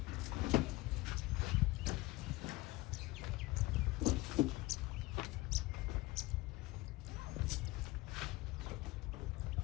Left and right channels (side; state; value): right; quieter; 20.1 dB